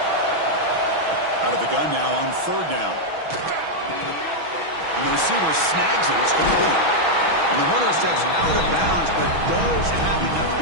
Out of the gun now on third down. And the receiver snags it. It's complete. And the runner steps out of bounds, but does have enough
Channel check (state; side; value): late; left; 6.2 ms